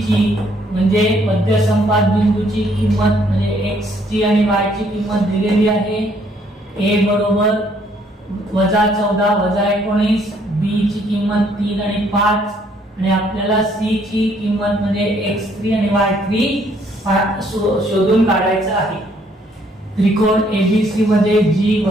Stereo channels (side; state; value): both; normal; correlation 0.66